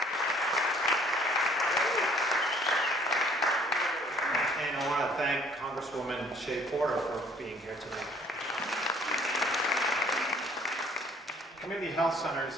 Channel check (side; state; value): both; normal; correlation 0.58